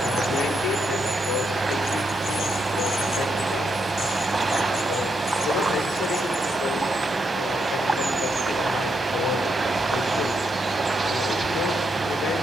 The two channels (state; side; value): normal; both; correlation 0.80